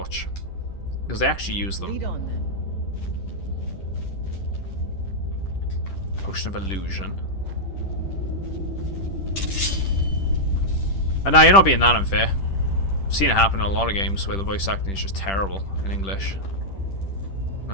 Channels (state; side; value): late; right; 10 ms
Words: Because they actually use them. Lead on then. Potion of illusion. And now you're not being that unfair. I've seen it happen in a lot of games where the voice acting is just terrible in English.